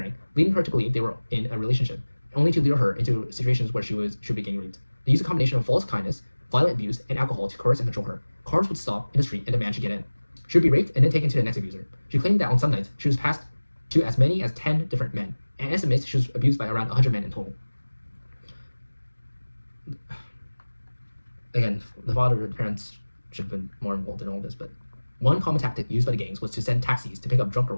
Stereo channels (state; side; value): inverted; both; correlation -1.00